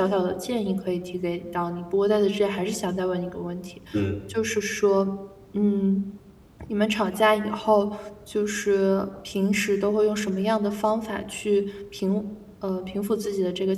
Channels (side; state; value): both; identical; correlation 1.00